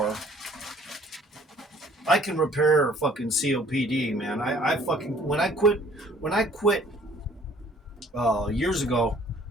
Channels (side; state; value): both; normal; correlation 0.56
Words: I can repair fucking COPD, man. I fucking when I quit years ago